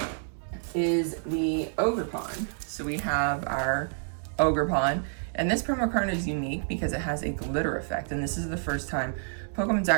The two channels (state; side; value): silent; left; digital silence